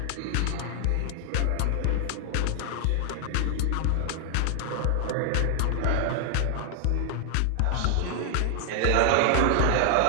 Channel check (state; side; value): different; both; correlation 0.00